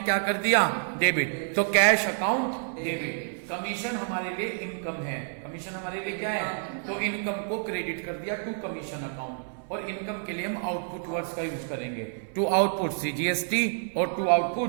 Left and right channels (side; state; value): left; silent; 59 dB below the other